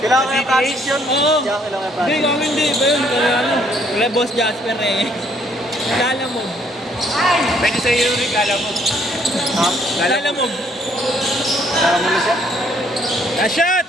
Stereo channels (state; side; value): normal; both; correlation 0.66